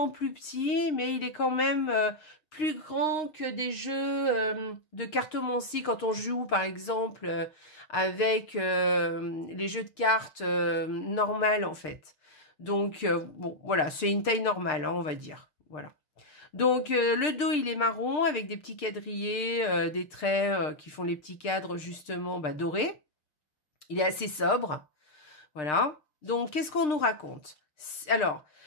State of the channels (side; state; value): right; late; 6.6 ms